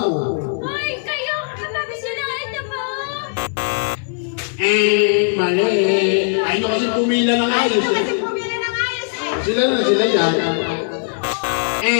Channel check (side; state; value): right; silent; digital silence